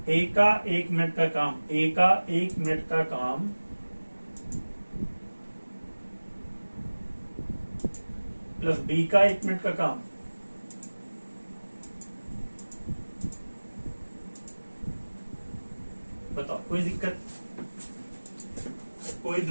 ए का 1 मिनट का काम, ए का 1 मिनट का काम प्लस बी का 1 मिनट का काम। बताओ कोई दिक्कत, कोई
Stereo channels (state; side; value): inverted; both; correlation -1.00